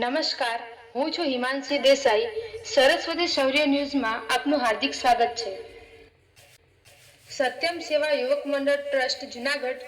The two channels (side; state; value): both; identical; correlation 1.00